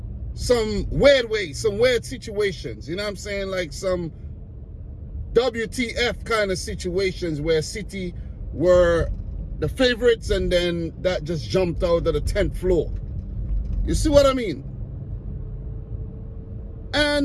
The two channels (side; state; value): both; identical; correlation 1.00